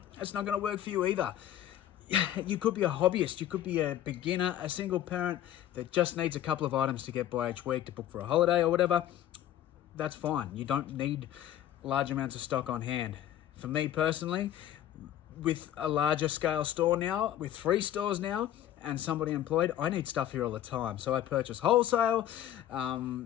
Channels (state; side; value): quieter; right; 11.9 dB